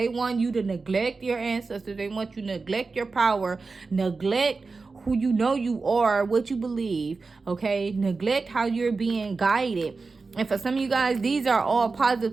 want you to neglect your ancestors. They want you to neglect your power, neglect who you are, what you believe, okay? Neglect how you're being guided. And for some of you guys, these are all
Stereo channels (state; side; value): quieter; left; 4.1 dB